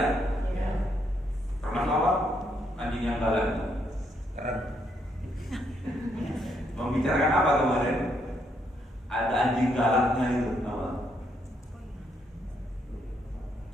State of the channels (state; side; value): normal; both; correlation 0.75